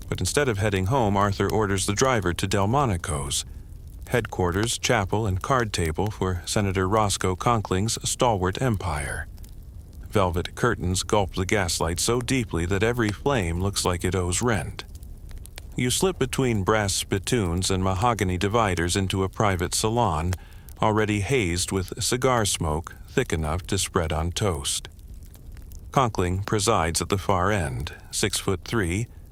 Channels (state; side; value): identical; both; correlation 1.00